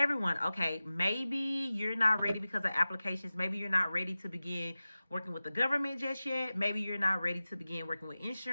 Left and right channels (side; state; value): both; inverted; correlation -0.96